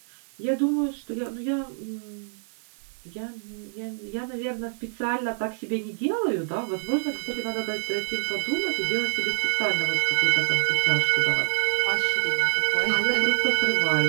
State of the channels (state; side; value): silent; left; 61 dB below the other